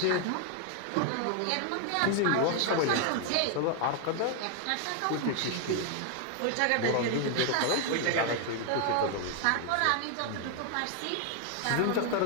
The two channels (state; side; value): different; both; correlation 0.00